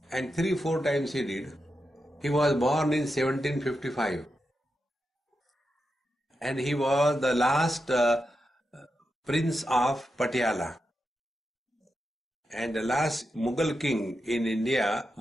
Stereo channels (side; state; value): both; normal; correlation 0.88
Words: And 3-4 times he did. He was born in 1755. And he was the last prince of Patiala. And the last Mughal king in India